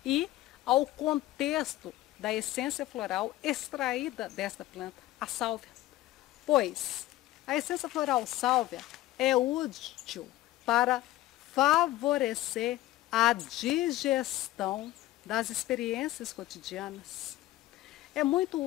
e ao contexto da essência floral extraída desta planta, a sálvia. Pois a essência floral sálvia é útil para favorecer a digestão das experiências cotidianas. É muito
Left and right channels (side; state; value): right; quieter; 15.9 dB